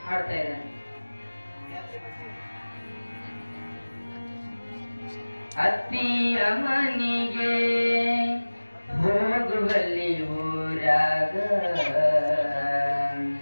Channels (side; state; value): both; inverted; correlation -1.00